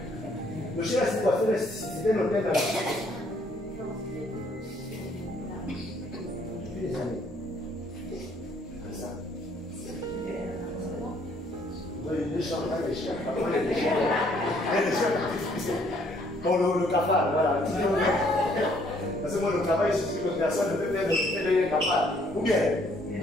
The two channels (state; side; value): normal; both; correlation 0.65